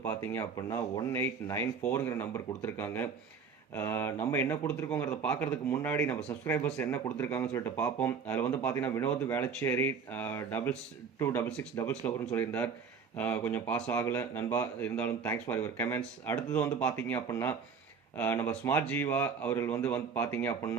பார்த்தீங்க அப்படின்னா 1894ங்கிற நம்பர் கொடுத்துருக்காங்க. நம்ம என்ன கொடுத்துருக்கோங்கிறத பார்க்கறதுக்கு முன்னாடி நம்ம சப்ஸ்கிரைபர்ஸ் என்ன கொடுத்துருக்காங்கன்னு சொல்லிட்டு பார்ப்போம். அதில் வந்து பார்த்தீங்கன்னா வினோத் வேளச்சேரி 2266 சொல்லியிருந்தார். கொஞ்சம் பாஸ் ஆகலை நண்பா, இருந்தாலும் தேங்க்ஸ் ஃபார் யுவர் கமெண்ட்ஸ். அடுத்தது வந்து பார்த்தீங்க அப்படின்னா நம்ம ஸ்மார்ட் ஜீவா அவர்கள் வந்து பார்த்தீங்க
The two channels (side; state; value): left; quieter; 5.9 dB